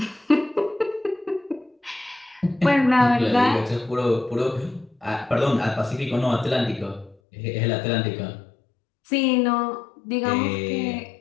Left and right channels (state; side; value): drops out; right; at 7.2 s